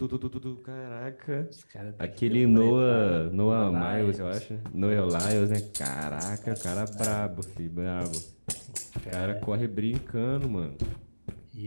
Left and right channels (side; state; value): both; inverted; correlation -1.00